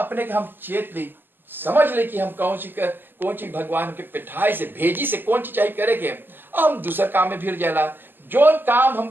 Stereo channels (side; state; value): left; late; 0.093 ms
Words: हम चेत ले, समझ ले कि हम कौन सी भगवान के पिठाई से भेजी से कौन सी चाहिए करे के हम दूसरा काम में फिर जाला। जो काम